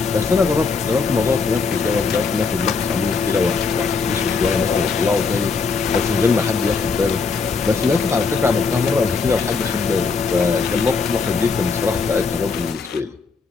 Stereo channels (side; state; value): right; quieter; 4.9 dB